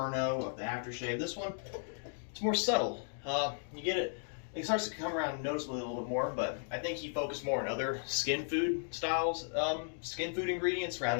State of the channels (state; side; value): silent; right; digital silence